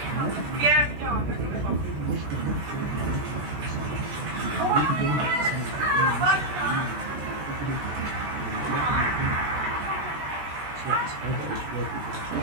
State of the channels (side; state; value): left; late; 14 ms